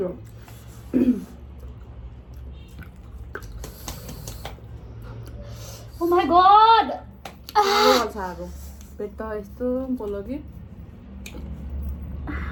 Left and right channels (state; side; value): identical; both; correlation 1.00